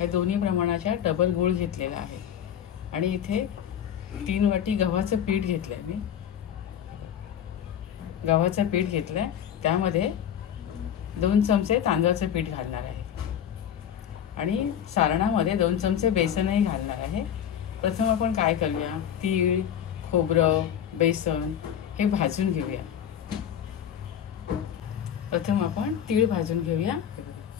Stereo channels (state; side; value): quieter; right; 9.4 dB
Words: दोन्ही प्रमाणाच्या डबल गूळ घेतलेला आहे आणि इथे 3 वाटी गव्हाचं पीठ घेतलंय। मी गव्हाचं पीठ घेतलंय, त्यामध्ये 2 चमचे तांदळाचं पीठ घालणार आहे आणि सारणामध्ये 2 चमचे बेसनही घालणार आहे। प्रथम आपण काय करूया, तीळ, खोबरं, बेसन हे भाजून घेऊया। प्रथम आपण तीळ भाजून घेऊया।